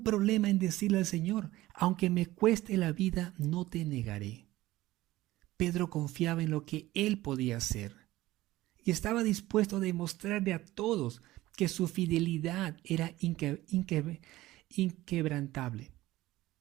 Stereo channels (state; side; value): quieter; left; 17.0 dB